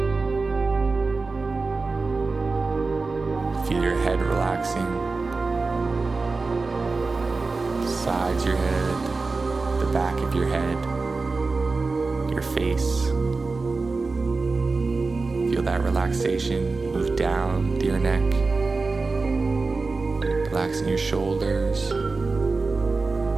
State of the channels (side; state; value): left; quieter; 3.9 dB